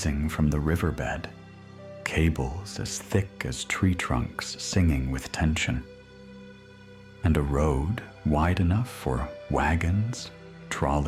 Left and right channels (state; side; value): identical; both; correlation 1.00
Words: from the riverbed, cables as thick as tree trunks singing with tension, and a road wide enough for wagons,